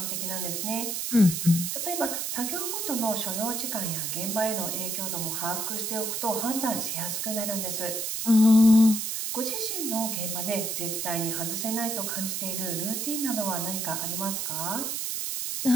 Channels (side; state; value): right; noise; hiss, 2 dB below the sound